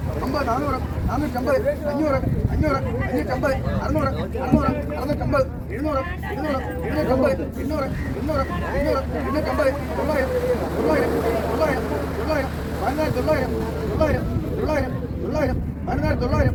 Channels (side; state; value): both; identical; correlation 1.00